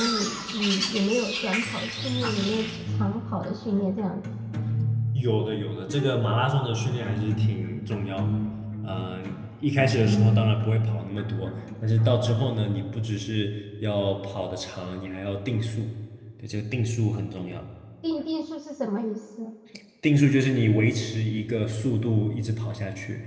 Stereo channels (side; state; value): both; identical; correlation 1.00